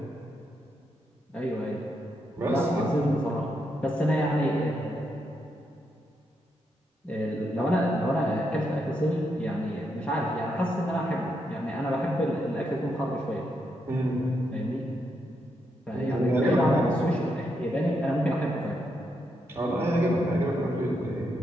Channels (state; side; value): normal; both; correlation 0.81